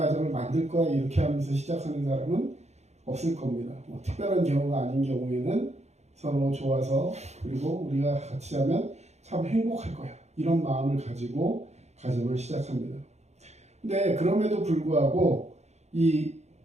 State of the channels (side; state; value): left; late; 0.32 ms